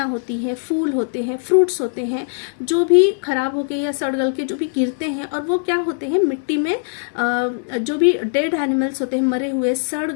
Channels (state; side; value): silent; right; digital silence